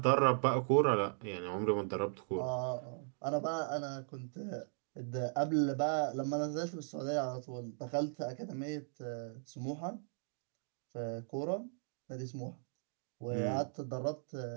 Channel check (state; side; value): silent; left; digital silence